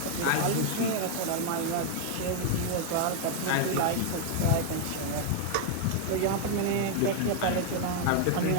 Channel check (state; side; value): different; both; correlation 0.00